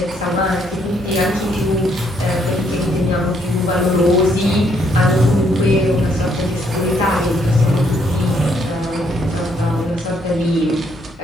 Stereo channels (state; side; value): normal; both; correlation 0.71